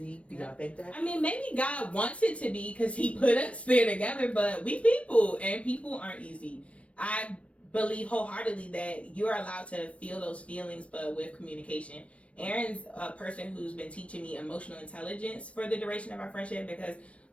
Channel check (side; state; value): right; late; 0.063 ms